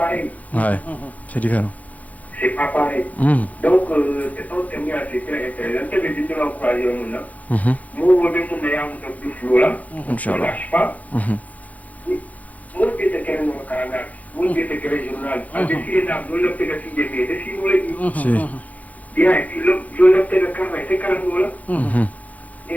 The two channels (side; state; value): right; late; 0.074 ms